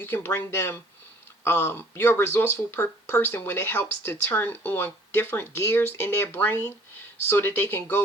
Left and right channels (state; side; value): normal; both; correlation 0.54